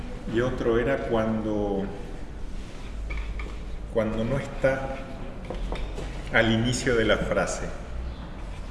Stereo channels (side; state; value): both; identical; correlation 1.00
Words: y otro era cuando no está al inicio de la frase.